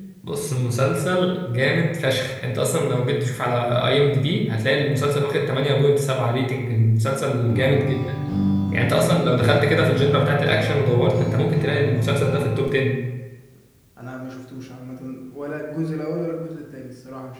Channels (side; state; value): both; identical; correlation 1.00